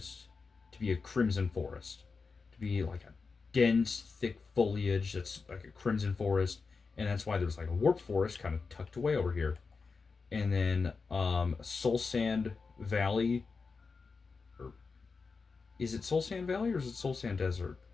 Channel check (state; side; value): quieter; right; 4.7 dB